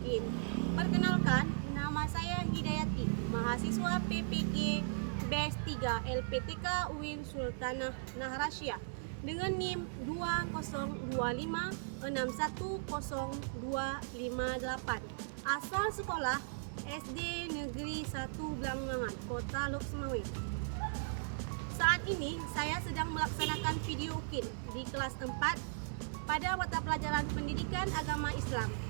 Perkenalkan, nama saya Hidayati, mahasiswa PPG BES 3 LPTK UIN Sultanah Nahrasyah dengan NIM 2025610258. Asal sekolah SD Negeri 1 Blangmangan, Kota Lok Sumawe. Saat ini saya sedang melaksanakan video UKIN di kelas 4 pada mata pelajaran Pendidikan Agama Islam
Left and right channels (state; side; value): silent; left; digital silence